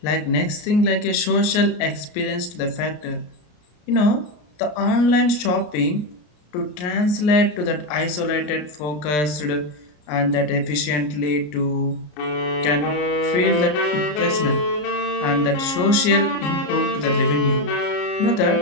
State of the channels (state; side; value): late; right; 33 ms